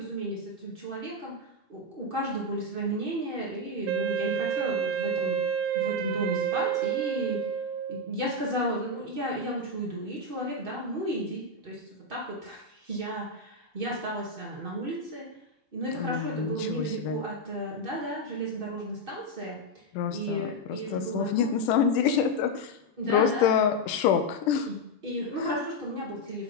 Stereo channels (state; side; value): normal; both; correlation 0.03